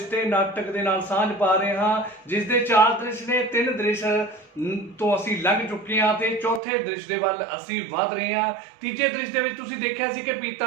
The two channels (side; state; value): left; drops out; at 6.6 s